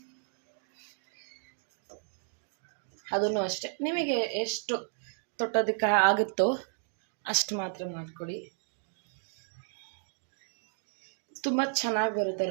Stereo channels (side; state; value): left; silent; digital silence